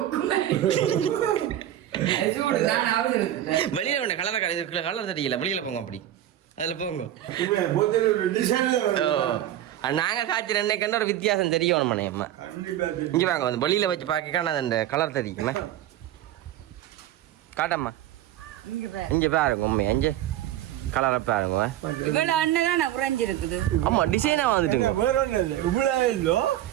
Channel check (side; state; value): left; quieter; 12.5 dB